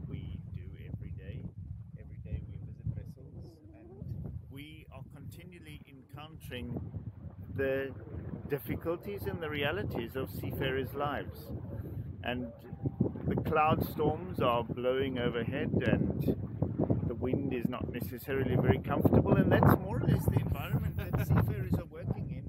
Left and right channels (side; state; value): both; identical; correlation 1.00